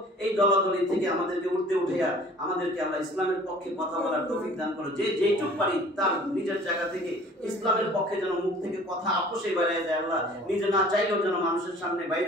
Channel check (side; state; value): both; normal; correlation 0.50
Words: এই দলাদলি থেকে আমাদেরকে উঠাইয়া আমাদেরকে আল্লাহ ইসলামের পক্ষে কথা বলার তৌফিক দান করো। যে যেইটুক পারি তার নিজের জায়গা থেকে ইসলামের পক্ষে যেন মুখ থেকে কথা আপোষে বাইরে যায়। আল্লাহ নিজে না চাইলেও যেন মানুষের সামনে বাইরে